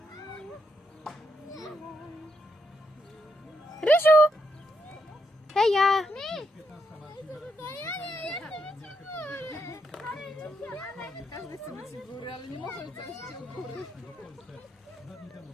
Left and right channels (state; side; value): normal; both; correlation 0.79